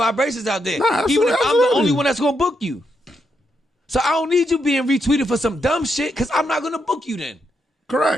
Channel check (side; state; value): both; normal; correlation 0.81